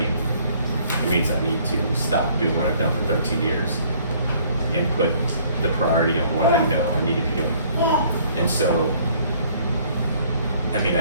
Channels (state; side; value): inverted; both; correlation -0.59